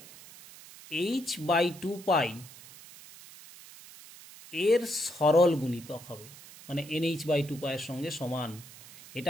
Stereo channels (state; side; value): noise; right; hiss, 18 dB below the sound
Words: h/2π এর সরল গুণিতক হবে, মানে NH/2π এর সঙ্গে সমান।